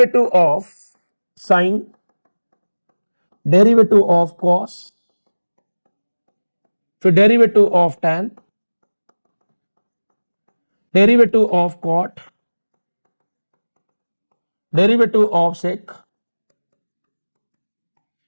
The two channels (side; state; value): both; inverted; correlation -1.00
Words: of sine, derivative of cos, फिर derivative of tan, derivative of cot, derivative of sec,